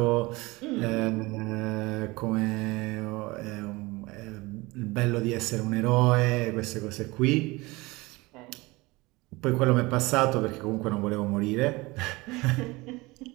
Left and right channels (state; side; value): quieter; left; 22.6 dB